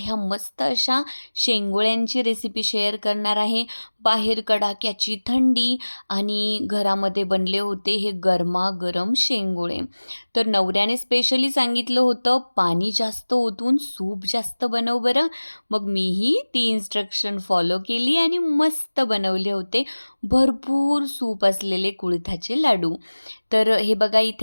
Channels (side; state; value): both; inverted; correlation -1.00